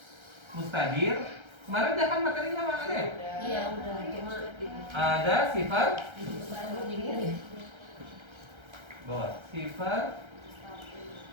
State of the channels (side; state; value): left; late; 1.3 ms